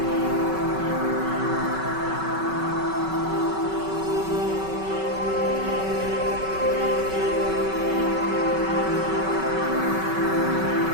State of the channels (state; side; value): late; left; 5.3 ms